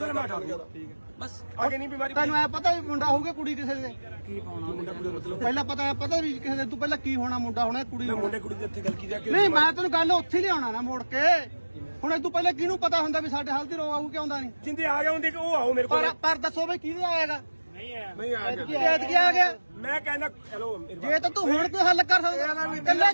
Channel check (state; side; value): inverted; both; correlation -1.00